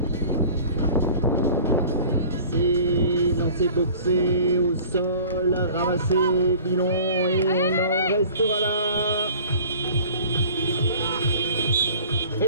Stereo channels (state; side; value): inverted; both; correlation -0.46